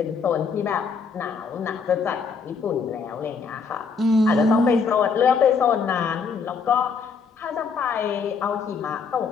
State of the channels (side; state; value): right; quieter; 5.3 dB